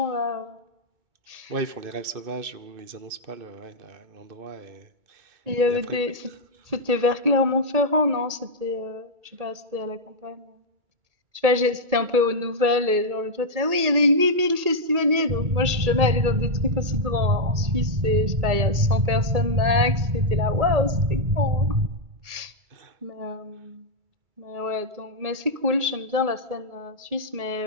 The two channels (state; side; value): late; left; 1.8 ms